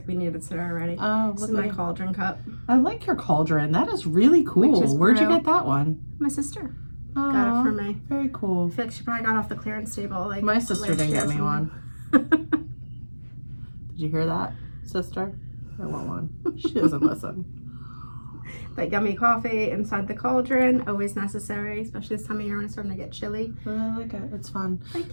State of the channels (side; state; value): both; inverted; correlation -1.00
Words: we needed it already. Oh, This is my cauldron cup. I like your cauldron. That is really cool. Where'd you get that one? My sister Oh, got it for me. Very cool. I feel like she probably got off the clearance table. Like My sister didn't get me one. Did you hear that, sister? I want one. She doesn't listen. But yummy coffee inside the cauldron, always necessary, especially this time of year when it's starting to get chilly. But I like it. It's fun. Thank